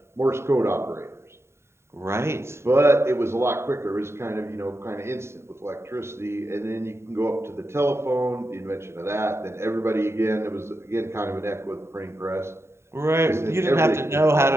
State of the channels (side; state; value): left; late; 0.13 ms